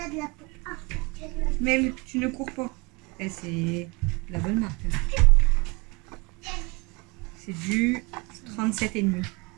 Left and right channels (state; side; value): quieter; left; 27.6 dB